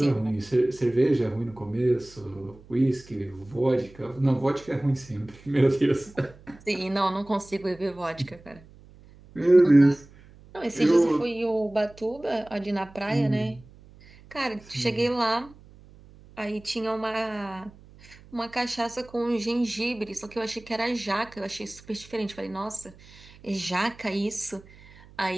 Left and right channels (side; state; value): right; noise; hum, 23 dB below the sound